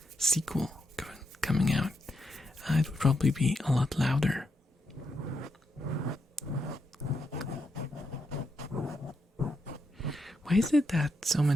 sequel coming out, it would probably be a lot louder. Why is it that so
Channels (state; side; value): normal; both; correlation 0.82